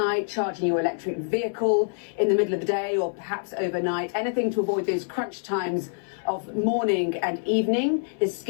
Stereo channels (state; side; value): silent; right; 57 dB below the other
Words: charging your electric vehicle in the middle of the day or perhaps overnight, anything to avoid those crunch times of morning and evening. This